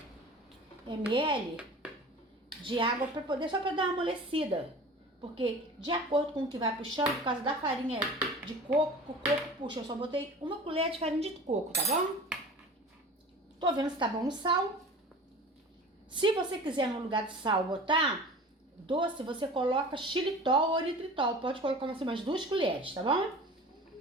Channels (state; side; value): normal; both; correlation 0.39